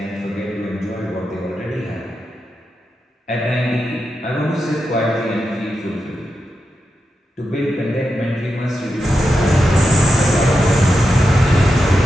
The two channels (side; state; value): both; normal; correlation 0.88